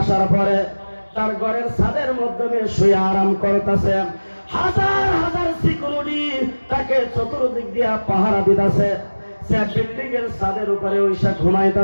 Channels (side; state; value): both; inverted; correlation -1.00